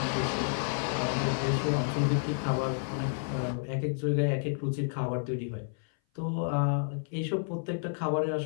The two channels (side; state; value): right; silent; 56 dB below the other